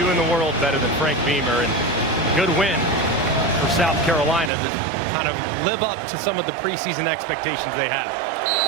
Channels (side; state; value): left; drops out; at 4.5 s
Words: in the world better than Frank Beamer, and a good win for South Carolina to kind of live up to some of the preseason expectations they have.